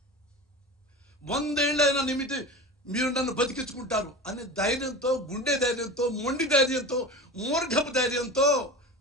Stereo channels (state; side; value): normal; both; correlation 0.31